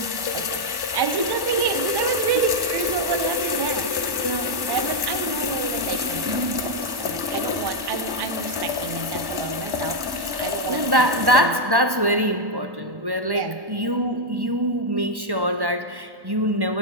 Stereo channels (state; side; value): late; left; 1.1 ms